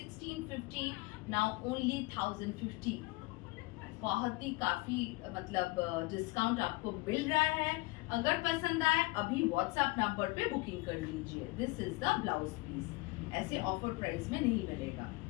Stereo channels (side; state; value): right; quieter; 23.6 dB